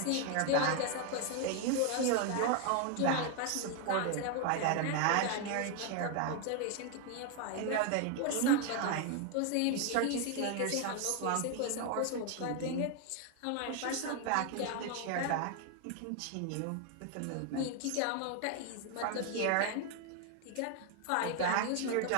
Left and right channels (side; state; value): both; different; correlation 0.01